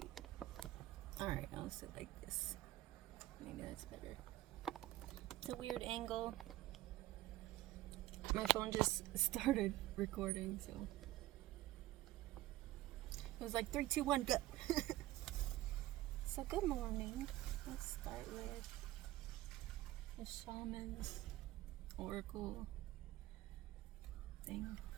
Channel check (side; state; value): left; quieter; 16.5 dB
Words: Alright, I'll sit like this. Maybe that's better. It's a weird angle. My phone just started recording, so it was like 3, 2, 1, go. So good morning. Let's start with the shaman's oracle thing.